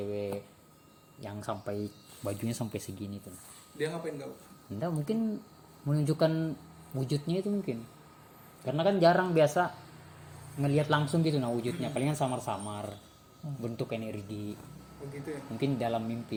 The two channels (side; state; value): both; identical; correlation 1.00